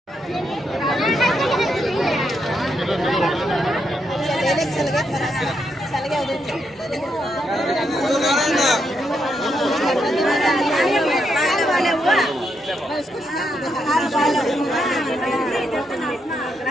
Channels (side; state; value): both; normal; correlation 0.80